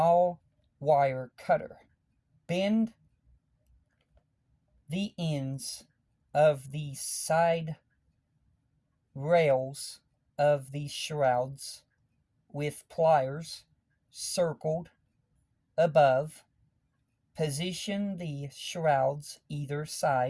wire cutter. Bend the ends of the side rails of the shrouds with pliers circled above. Position the shrouds either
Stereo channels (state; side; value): identical; both; correlation 1.00